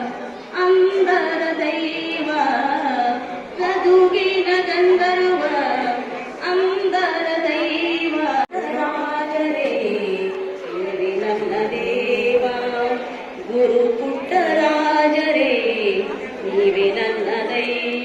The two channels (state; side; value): identical; both; correlation 1.00